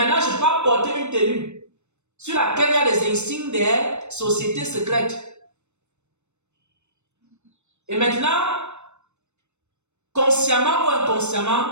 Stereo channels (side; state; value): left; late; 0.82 ms